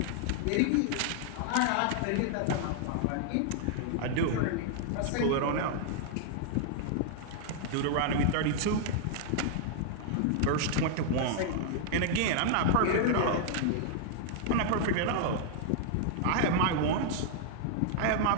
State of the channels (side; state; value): both; different; correlation 0.00